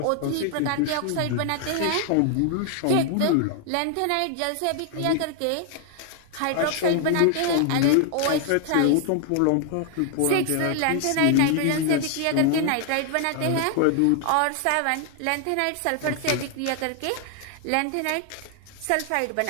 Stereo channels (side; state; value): both; different; correlation 0.00